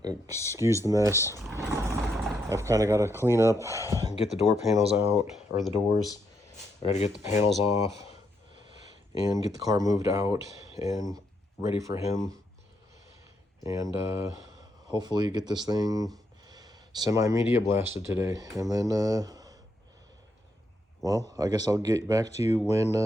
excuse the mess. I've kind of got to clean up and get the door panels out, or the doors. I got to get the panels off and get the car moved out and ready for him. And hopefully get this thing semi-media blasted today. And then, well, I guess I'll get back to you when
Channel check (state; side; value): normal; both; correlation 0.78